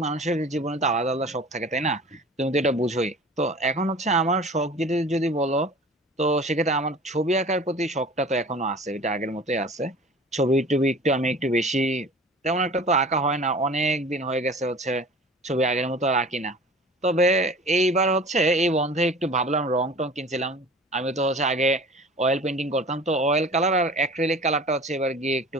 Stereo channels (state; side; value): normal; both; correlation 0.41